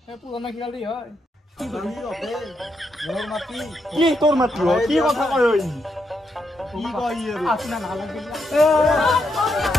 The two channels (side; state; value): both; normal; correlation 0.81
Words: এই পুৰণা খিয়ালি হয় মোৰ মাটি কি তোৰ মাতি অ কি কথা কয় ঐ কি কয় আৰু আপোনাৰ নালাগ গলি